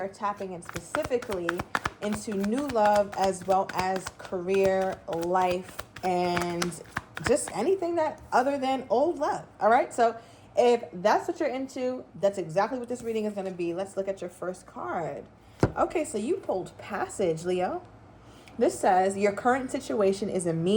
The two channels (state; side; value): identical; both; correlation 1.00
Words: tapping in specifically into new love as well as career, life, and just anything that other than old love. All right. So if that's what you're into, that's exactly what this reading is going to be. Let's look at your first card. Okay. So you pulled Passage, Leo. This says, your current situation is a